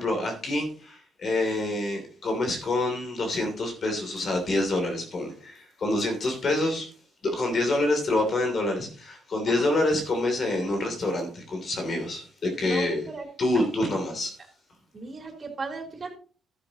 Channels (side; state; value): both; normal; correlation 0.78